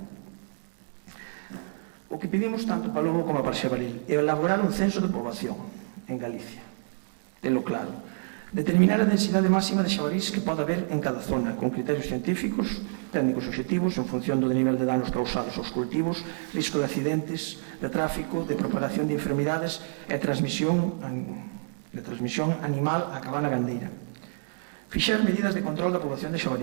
O que pedimos tanto para o lobo como para o xabaril é elaborar un censo de poboación en Galicia, tenlo claro, determinar a densidade máxima de xabarís que pode haber en cada zona, con criterios científicos, técnicos obxectivos, en función do nivel de danos causados aos cultivos, risco de accidentes, de tráfico, de propagación de enfermidades e transmisión animal á cabana gandeira. Fixar medidas de control da poboación de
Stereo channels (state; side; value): silent; left; digital silence